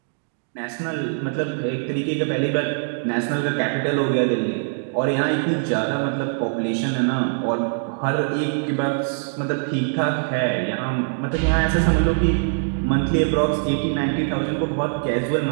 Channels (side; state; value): left; silent; digital silence